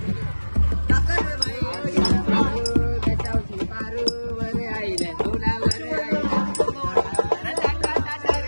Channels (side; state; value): both; inverted; correlation -1.00